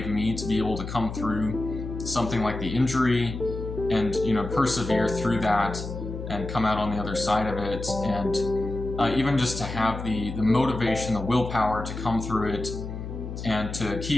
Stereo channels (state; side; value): noise; left; hum, 7 dB below the sound